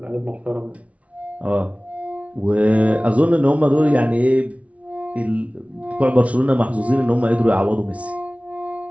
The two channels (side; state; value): left; late; 0.065 ms